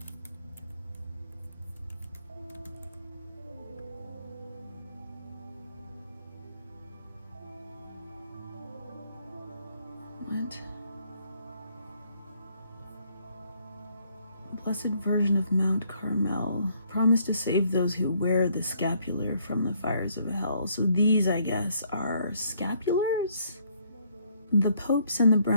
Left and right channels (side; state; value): both; inverted; correlation -0.68